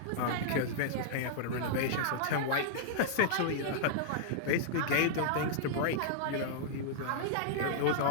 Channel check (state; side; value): different; both; correlation -0.02